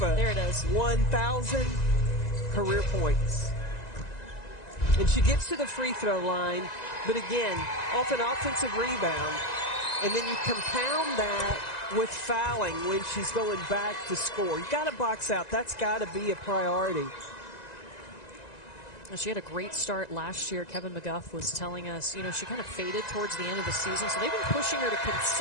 There it is. 1,000 career points. And she gets to the free throw line, but again, off an offensive rebound. And then you compound that with fouling when she's going back to score. You got to box out. That's got to be a priority. She had a great start last year. Kevin McGuff was telling us, you know, she kind of faded towards the end of the season. So they've been pushing her to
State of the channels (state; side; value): late; right; 1.9 ms